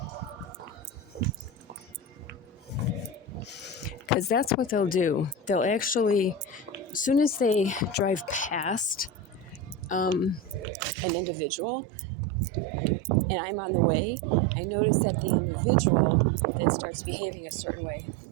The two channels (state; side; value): drops out; left; at 10.7 s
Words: Because that's what they'll do. They'll actually, as soon as they drive past an individual and I'm on the way, I notice that the individual then starts behaving a certain way.